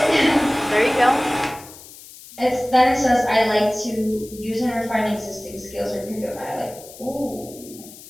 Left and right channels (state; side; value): noise; left; hiss, 18 dB below the sound